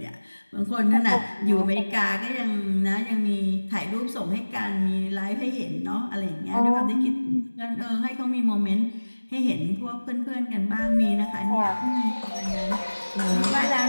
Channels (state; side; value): inverted; both; correlation -1.00